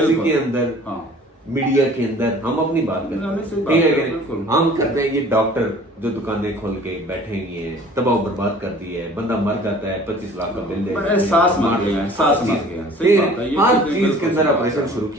के अंदर, मीडिया के अंदर हम अपनी बात करते हैं, ठीक है, हम करते हैं। ये डॉक्टर जो दुकानें खोल के बैठे हुए हैं, तबाह बर्बाद कर दी है, बंदा मर जाता है, 25 लाख का बिल दे, सांस मार गया, हर चीज के अंदर ऑपरेशन शुरू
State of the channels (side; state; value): both; normal; correlation 0.49